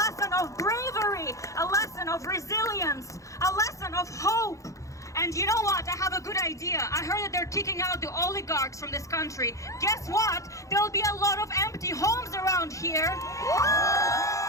of bravery, a lesson of resilience, a lesson of hope. And you know what? I have a good idea. I heard that they're kicking out the oligarchs from this country. Guess what? There'll be a lot of empty homes around here.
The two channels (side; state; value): right; late; 0.15 ms